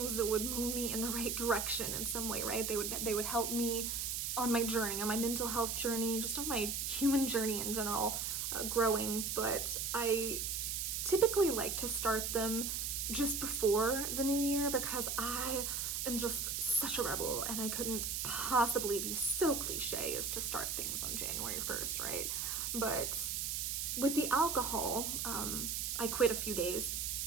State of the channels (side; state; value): right; noise; hiss, 1 dB below the sound